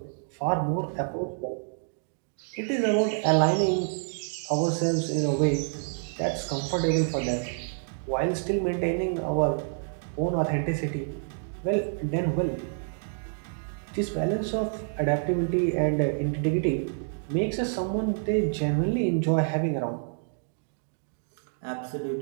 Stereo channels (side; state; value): left; silent; digital silence